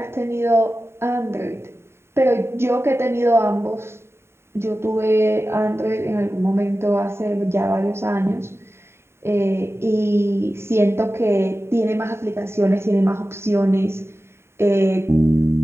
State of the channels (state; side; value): late; left; 0.12 ms